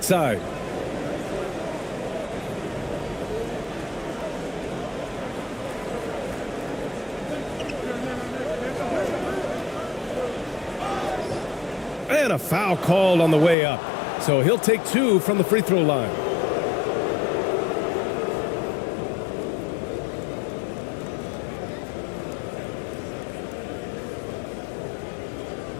side. And a foul called on the way up. So he'll take 2 from the free throw line.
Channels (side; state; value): right; drops out; at 13.6 s